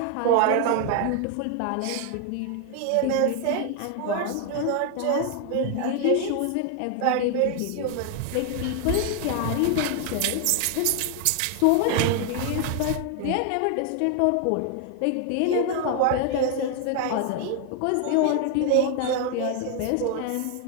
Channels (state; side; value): different; both; correlation 0.00